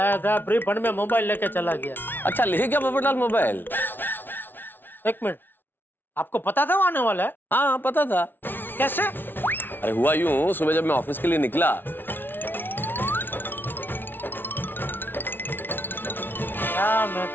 था, फ्री फंड में मोबाइल लेके चला गया। अच्छा, ले क्या पोपटलाल मोबाइल? एक मिनट, आपको पता था वो आने वाला है? हाँ पता था। कैसे? अरे हुआ यूं, सुबह जब मैं ऑफिस के लिए निकला, क्या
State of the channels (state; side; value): late; right; 0.098 ms